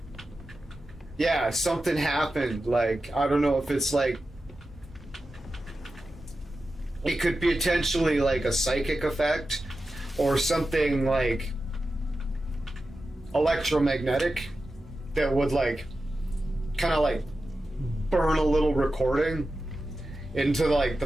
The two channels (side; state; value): both; normal; correlation 0.92